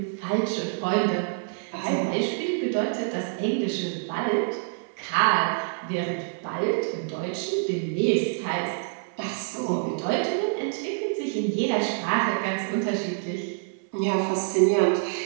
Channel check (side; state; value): left; silent; 60 dB below the other